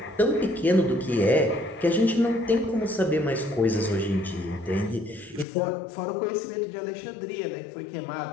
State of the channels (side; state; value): right; drops out; at 5.5 s